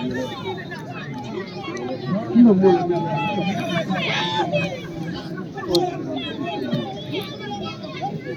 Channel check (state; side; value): identical; both; correlation 1.00